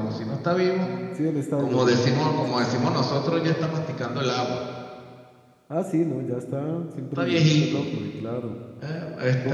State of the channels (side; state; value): both; identical; correlation 1.00